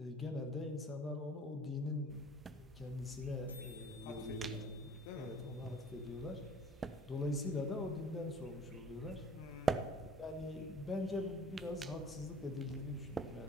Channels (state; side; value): normal; both; correlation 0.50